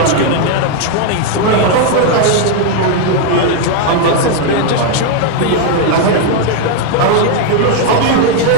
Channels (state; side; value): different; both; correlation 0.00